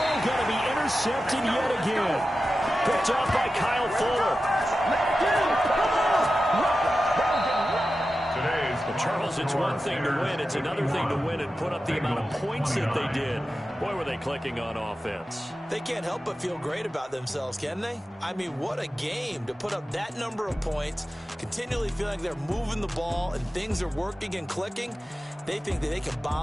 going to be intercepted yet again. Picked off by Kyle Fuller. Charles, it's one thing to win. It's another thing to win and put up the amount of points that they did. Boy, were they clicking on offense. They can't help but feel great about themselves, can they? I mean, what a game to put up that number of points, continually feel like they're moving the ball and things are working and clicking. They think that they can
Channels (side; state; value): both; normal; correlation 0.93